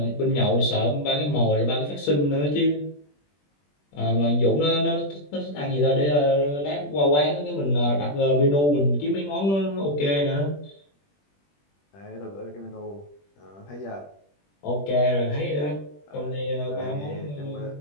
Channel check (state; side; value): late; right; 21 ms